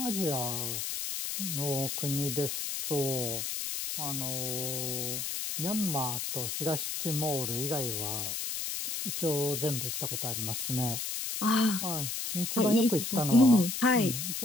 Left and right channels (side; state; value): left; noise; hiss, 3 dB below the sound